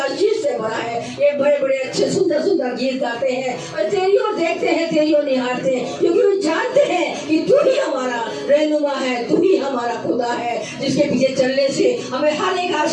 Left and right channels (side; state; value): both; identical; correlation 1.00